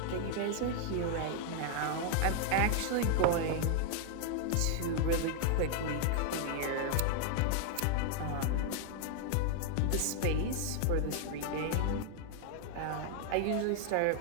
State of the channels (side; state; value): both; different; correlation 0.00